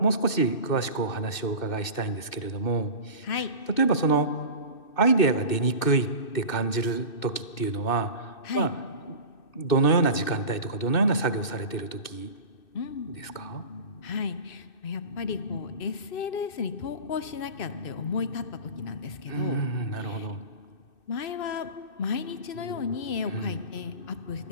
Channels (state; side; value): late; right; 2.6 ms